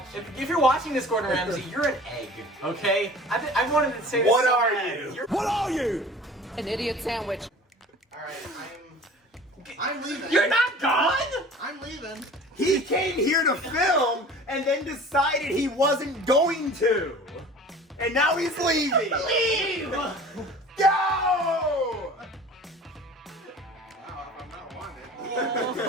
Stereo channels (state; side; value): normal; both; correlation 0.43